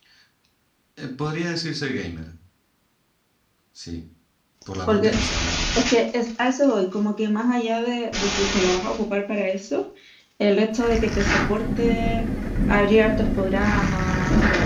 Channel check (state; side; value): identical; both; correlation 1.00